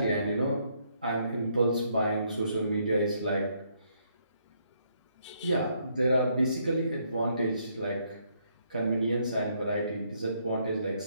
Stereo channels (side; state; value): both; inverted; correlation -0.72